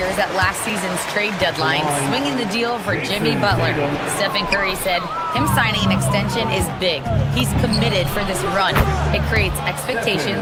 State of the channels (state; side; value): identical; both; correlation 1.00